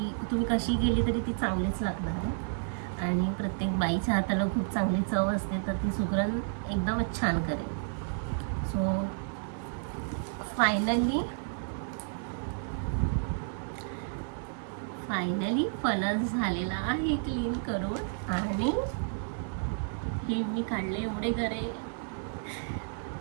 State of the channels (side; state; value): left; silent; 57 dB below the other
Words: तुम्ही कशी केली तरी ती चांगलीच लागणार आहे आणि प्रत्येक बाईच्या हाताला खूप चांगली चव असते, तर ती सुगरण एकदमच छान करेल. सो फायनली फणस झालेला आहे क्लीन करून आणि हे मी काढले एवढे गरे.